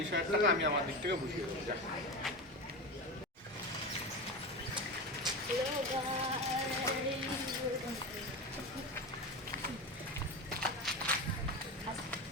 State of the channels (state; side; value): normal; both; correlation 0.22